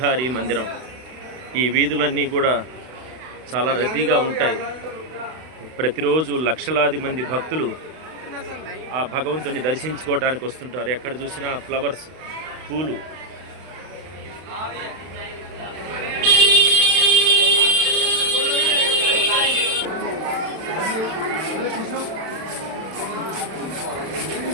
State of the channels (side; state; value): left; late; 32 ms